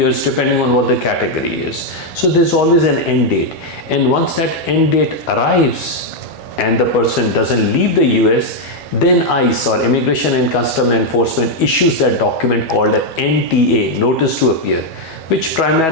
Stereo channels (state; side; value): late; right; 12 ms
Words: depending on what the category is. So there's always an end date. And once that end date arrives and the person doesn't leave the US, then ICE, or Immigration and Customs Enforcement, issues that document called a NTA, Notice to Appear, which